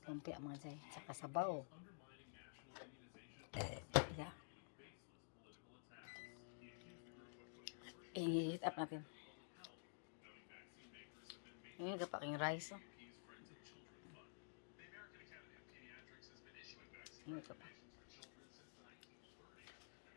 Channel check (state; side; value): silent; right; digital silence